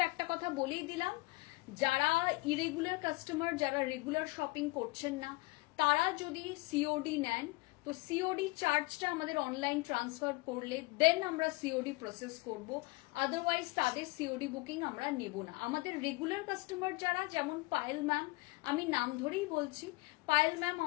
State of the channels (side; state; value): right; quieter; 23.8 dB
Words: একটা কথা বলেই দিলাম, যারা ইরেগুলার কাস্টমার, যারা রেগুলার শপিং করছেন না, তারা যদি সিওডি নেন তো সিওডি চার্জটা আমাদের অনলাইন ট্রান্সফার করলে দেন আমরা সিওডি প্রসেস করব, আদারওয়াইজ তাদের সিওডি বুকিং আমরা নেব না। আমাদের রেগুলার কাস্টমার যারা, যেমন পায়েল ম্যাম, আমি নাম ধরেই বলছি, পায়েল ম্যাম